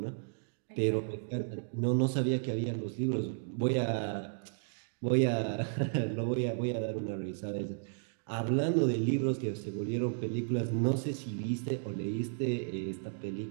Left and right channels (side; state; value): left; silent; digital silence